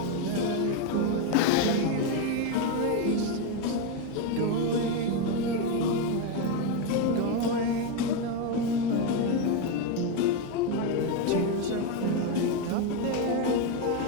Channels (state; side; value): different; both; correlation 0.03